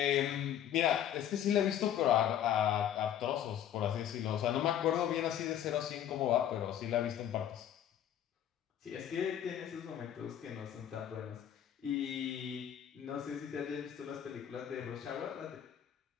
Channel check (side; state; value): right; quieter; 10.3 dB